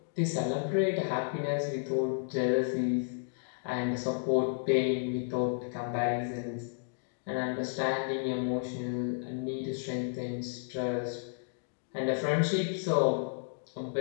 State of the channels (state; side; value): silent; right; digital silence